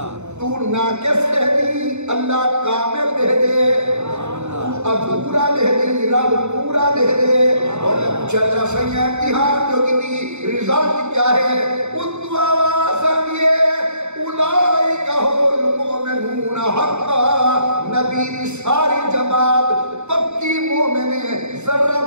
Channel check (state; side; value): late; left; 0.82 ms